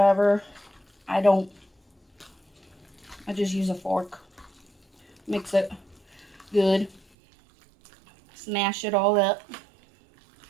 I just use a fork. Mix it good. Smash it all up.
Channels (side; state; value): left; drops out; at 7.1 s